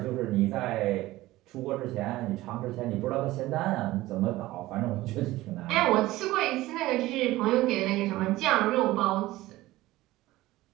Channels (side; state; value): left; quieter; 17.5 dB